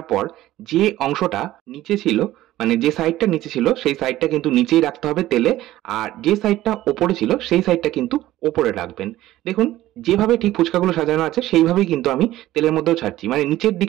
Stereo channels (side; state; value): left; quieter; 15.1 dB